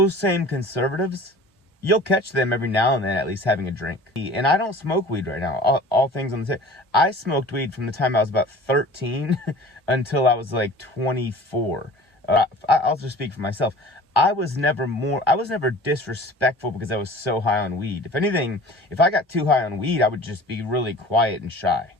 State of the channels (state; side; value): normal; both; correlation 0.43